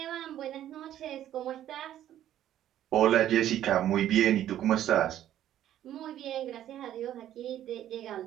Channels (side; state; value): left; quieter; 11.8 dB